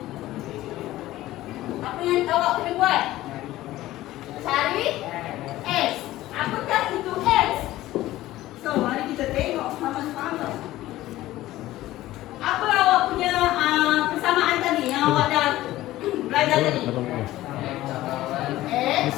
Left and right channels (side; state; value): right; quieter; 15.8 dB